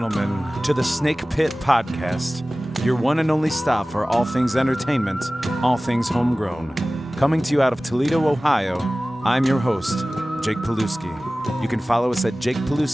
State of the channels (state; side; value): normal; both; correlation 0.97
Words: to the Snake Pit Podcast, your one and only stop for all things entertainment, all things homegrown. Coming to you out of Toledo, Ohio, I'm your host, Jake Pilewski. You can follow us at